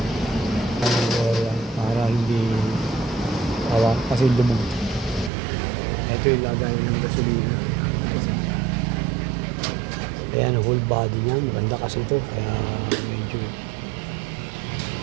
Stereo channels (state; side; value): drops out; left; at 5.3 s